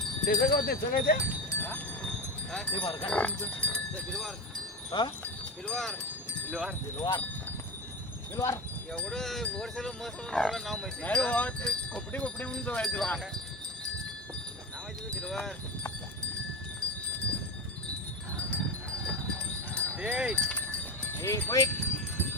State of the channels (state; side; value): normal; both; correlation 0.23